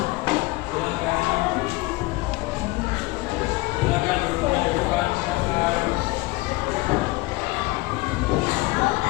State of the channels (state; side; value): quieter; right; 21.9 dB